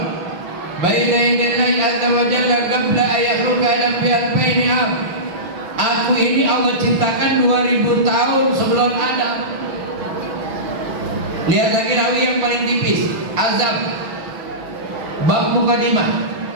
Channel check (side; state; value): left; late; 6.1 ms